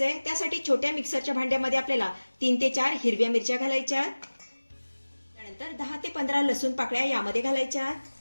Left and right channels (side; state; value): both; inverted; correlation -1.00